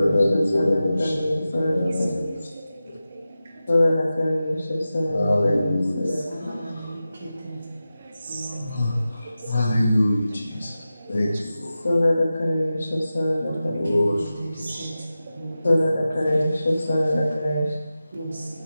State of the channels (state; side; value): inverted; both; correlation -0.94